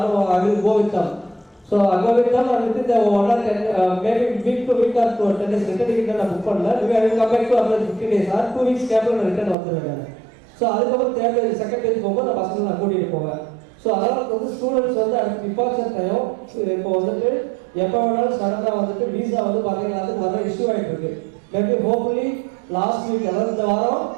I will go with them. So அங்கே வித் தம் அண்ட் வித் இந்த 1 or 10 maybe week to week or 10 days return ticket நான் புக் பண்ணல. I will come back to apply 15 days or 2 weeks கேப்பில் நான் return வந்துடுவேன். So அதுக்கப்புறம் third page second page போகும்போது நான் பசங்களை நான் கூட்டிகிட்டு போவேன். ஸோ அதனால் வந்து ஸ்டூடெண்ட்ஸ் வந்து அடுத்து டிபார்ச்சர் டைம் இப்போ வந்துட்டு எப்போ வேணாலும் சடனாக வந்துட்டு வீசா வந்து பார்த்தீங்கன்னா அதுக்கு வர இஷ்யூ ஆகிட்டு இருக்கு. மேபி ஹோப்ஃபுல்லி லாஸ்ட் வீக் அதாவது இந்த வாரம்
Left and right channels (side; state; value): left; drops out; at 9.6 s